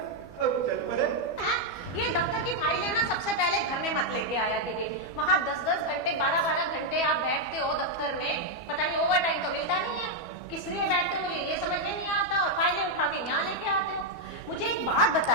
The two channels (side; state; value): right; late; 12 ms